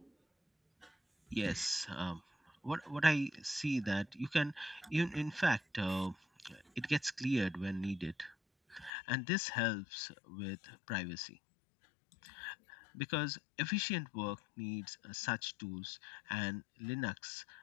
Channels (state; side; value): drops out; right; at 8.9 s